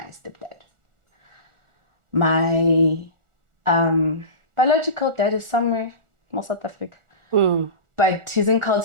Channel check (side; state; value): left; late; 1.4 ms